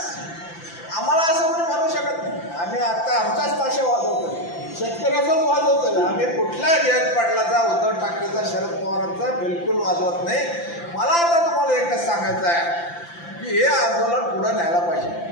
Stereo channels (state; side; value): late; right; 5.9 ms